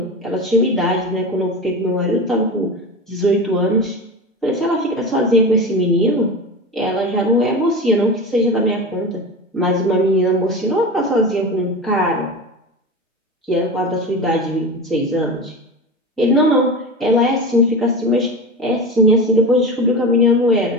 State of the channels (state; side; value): normal; both; correlation 0.27